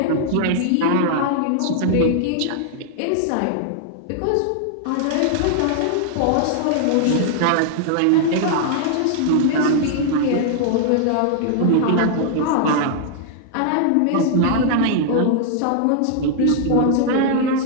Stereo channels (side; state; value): both; different; correlation -0.01